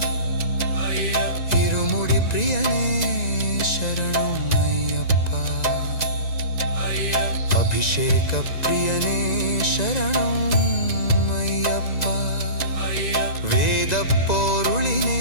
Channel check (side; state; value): right; late; 1.9 ms